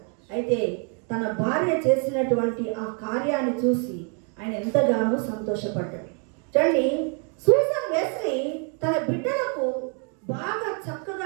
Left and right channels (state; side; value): quieter; left; 39.8 dB